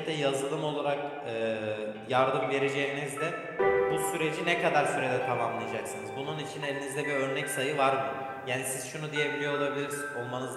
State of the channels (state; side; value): identical; both; correlation 1.00